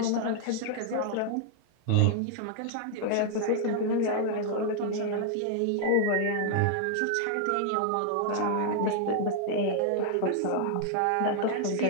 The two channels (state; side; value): different; both; correlation -0.01